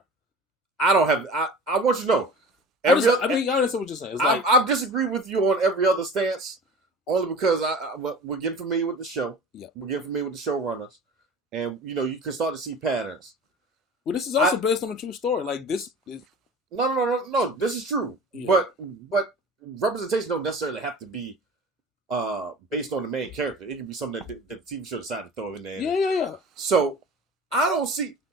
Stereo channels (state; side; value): normal; both; correlation 0.38